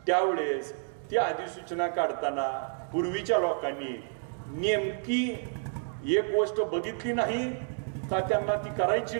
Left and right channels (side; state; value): left; silent; 58 dB below the other